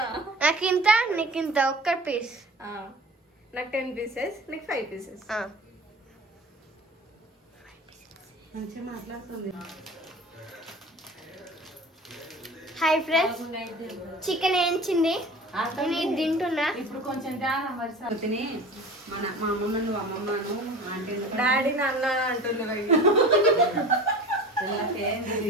నాకు ఇంత నీకు ఇంత ఒక్క పీస్. నాకు 10 పీసెస్, నీకు 5 పీసెస్. మంచిగా మాట్లాడుతుంది. హాయ్ ఫ్రెండ్స్, చికెన్ వేయించింది నేను తింటున్నా. ఇప్పుడు కొంచెం తిని మా అమ్మమ్మ నువ్వు అమ్మమ్మను ఆంటీ డాడీ నాన్న అంటున్నారు.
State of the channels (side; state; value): both; normal; correlation 0.38